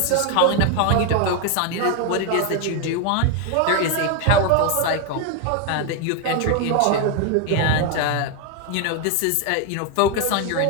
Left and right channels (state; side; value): different; both; correlation 0.01